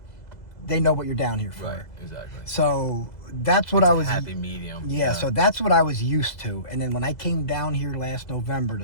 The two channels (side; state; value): right; late; 2.0 ms